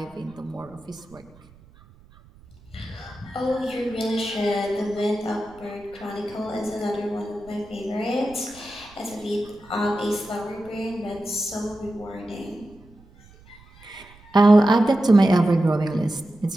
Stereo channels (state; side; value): noise; right; rumble, 25 dB below the sound